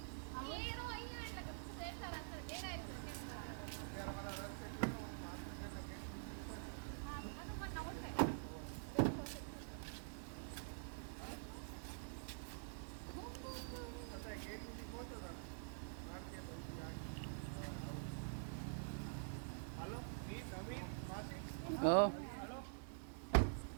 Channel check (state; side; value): silent; left; digital silence